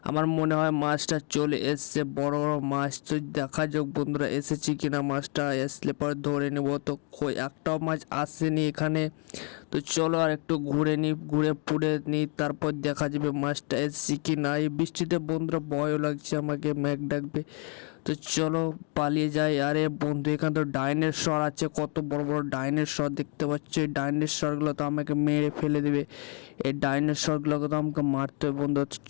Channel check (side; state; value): right; quieter; 38.0 dB